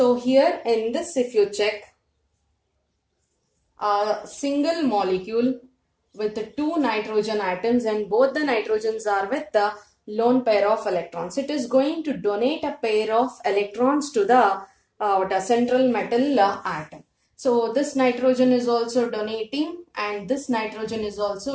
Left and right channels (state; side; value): identical; both; correlation 1.00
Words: here in this, if you check, a single molecule with two nitrogen atoms and both the nitrogens are with the lone pair of electrons, it is going to donate a pair of electrons to the central metal atom. So this nitrogen is also donating and this nitrogen is